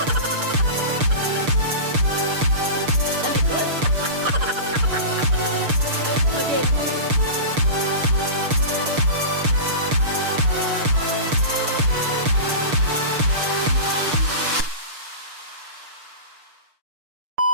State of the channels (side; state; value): left; late; 6.7 ms